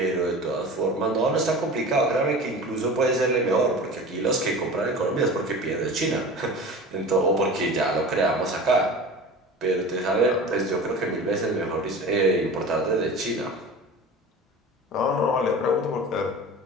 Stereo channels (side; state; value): both; normal; correlation 0.36